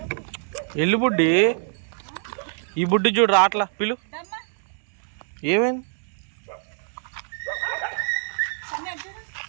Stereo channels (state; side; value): silent; left; 62 dB below the other